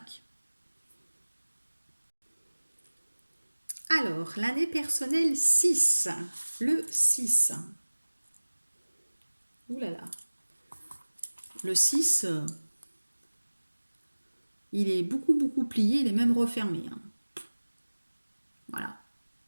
Alors, l'année personnelle 6. Le 6. Ouh là là. Le 6, il est beaucoup, beaucoup plié, il est même refermé, hein. Voilà.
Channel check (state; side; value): inverted; both; correlation -1.00